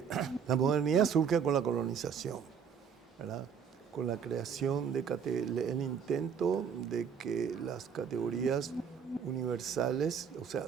la modernidad surge con la colonización, ¿verdad?, con la creación el intento de que las categorías universales, o sea,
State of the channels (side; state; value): left; quieter; 7.1 dB